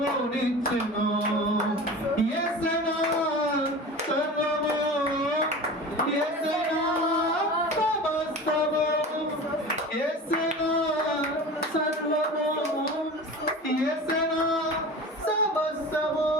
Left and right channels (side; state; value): both; normal; correlation 0.34